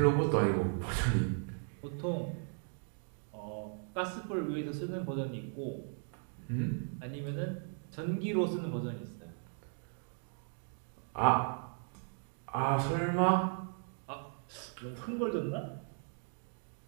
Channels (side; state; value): left; silent; 53 dB below the other